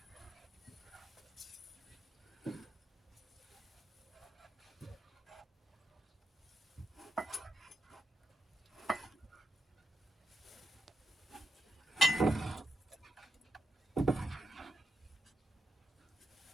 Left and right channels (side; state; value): both; normal; correlation 0.80